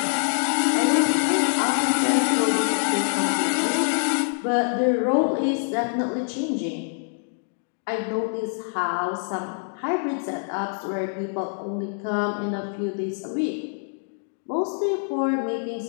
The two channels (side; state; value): right; silent; digital silence